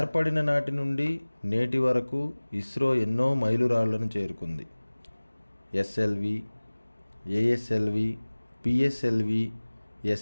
నాటి నుండి నేటి వరకు ఇస్రో ఎన్నో మైలురాళ్లను చేరుకుంది. ఎస్ఎల్వి, ఏఎస్ఎల్వి, పిఎస్ఎల్వి,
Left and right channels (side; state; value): both; inverted; correlation -1.00